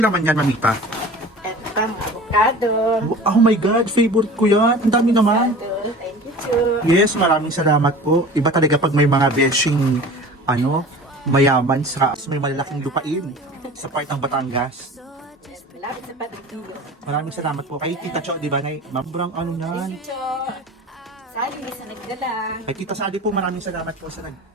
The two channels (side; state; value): both; normal; correlation 0.40